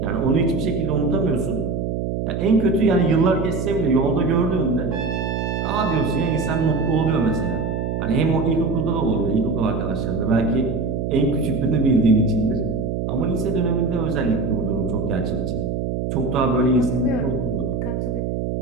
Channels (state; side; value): noise; right; hum, 2 dB below the sound